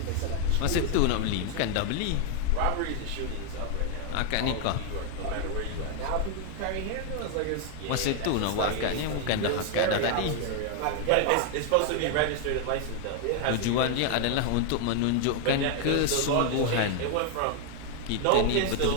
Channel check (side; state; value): both; different; correlation 0.00